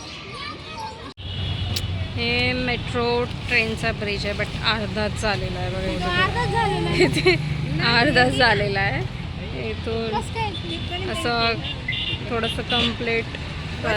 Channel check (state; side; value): identical; both; correlation 1.00